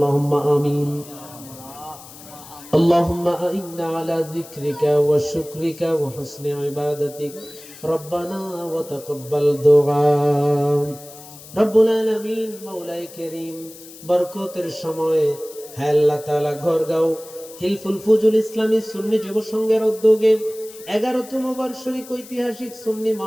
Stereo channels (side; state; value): left; noise; hiss, 18 dB below the sound